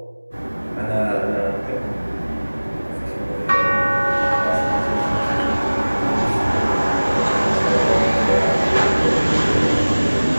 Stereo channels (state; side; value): inverted; both; correlation -1.00